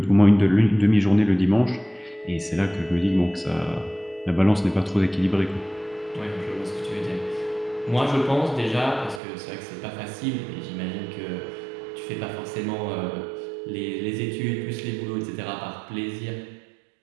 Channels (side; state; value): left; drops out; at 9.2 s